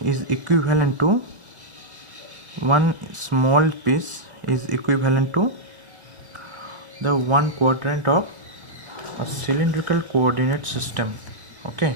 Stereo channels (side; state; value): left; late; 1.8 ms